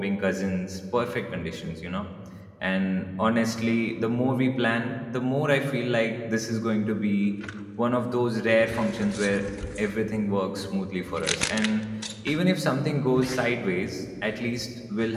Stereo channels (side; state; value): both; identical; correlation 1.00